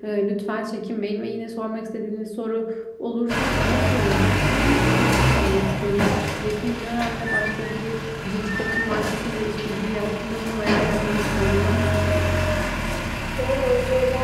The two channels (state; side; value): identical; both; correlation 1.00